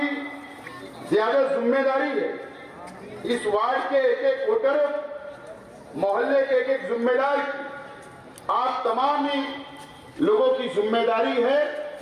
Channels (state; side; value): identical; both; correlation 1.00